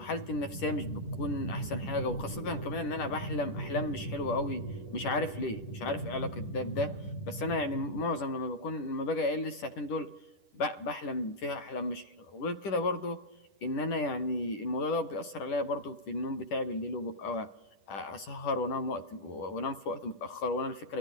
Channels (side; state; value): right; late; 10 ms